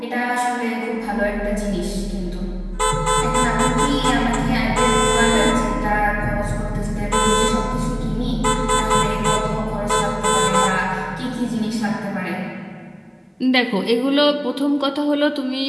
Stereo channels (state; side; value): identical; both; correlation 1.00